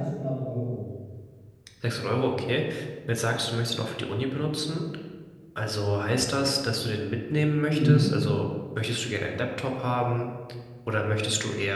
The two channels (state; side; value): identical; both; correlation 1.00